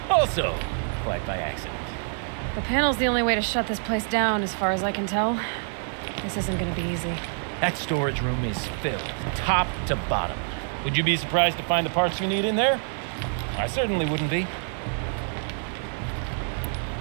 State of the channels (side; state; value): left; silent; 61 dB below the other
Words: Also, quite by accident. The panel's the only way to shut this place down, as far as I can tell. This isn't gonna be easy. That storage room is filled, top to bottom. Would you be surprised to find the parts you need in there? I certainly wouldn't be.